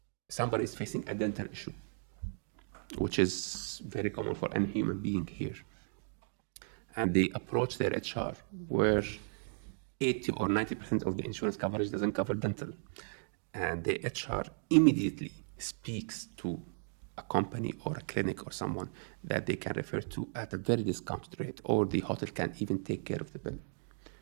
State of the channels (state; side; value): silent; left; digital silence